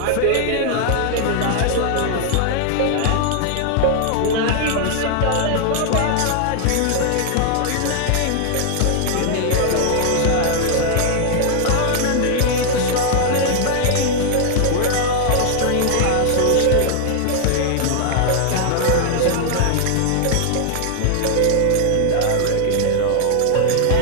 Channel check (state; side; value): different; both; correlation 0.00